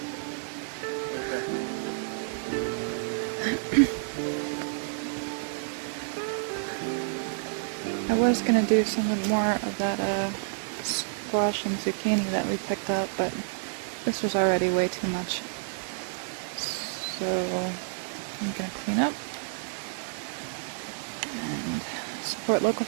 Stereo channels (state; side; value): silent; left; digital silence